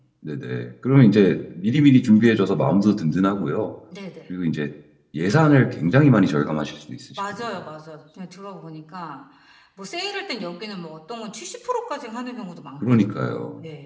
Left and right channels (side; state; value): both; identical; correlation 1.00